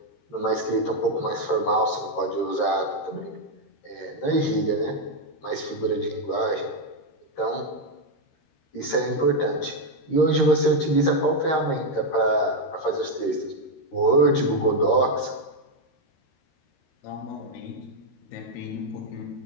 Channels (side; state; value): right; late; 13 ms